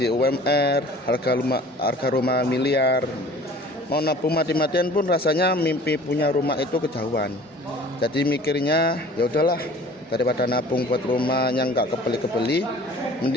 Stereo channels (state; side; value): normal; both; correlation 0.47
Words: UMR, harga rumah miliar. Mau nabung mati-matian pun rasanya mimpi punya rumah itu kejauhan. Jadi mikirnya ya udahlah, daripada nabung buat rumah yang nggak kebeli-kebeli,